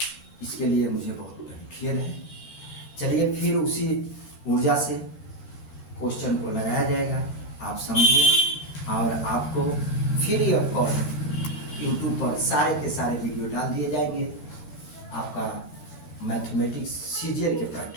इसके लिए मुझे बहुत बड़ी खेद है। चलिए फिर उसी ऊर्जा से क्वेश्चन को लगाया जाएगा, आप समझिए। और आपको फ्री ऑफ कॉस्ट यूट्यूब पर सारे के सारे वीडियो डाल दिए जाएंगे आपका मैथमेटिक्स सीरियल के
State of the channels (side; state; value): right; late; 12 ms